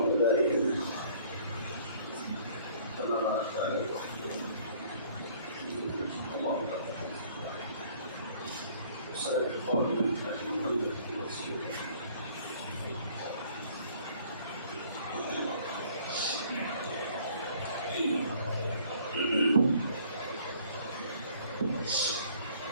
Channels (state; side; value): inverted; both; correlation -0.57